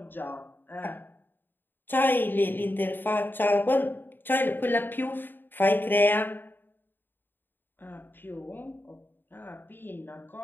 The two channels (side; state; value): right; late; 0.094 ms